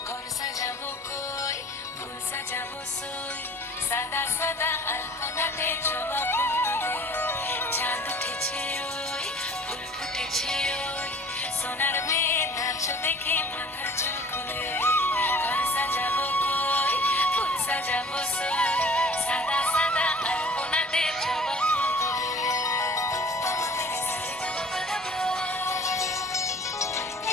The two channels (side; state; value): both; normal; correlation 0.48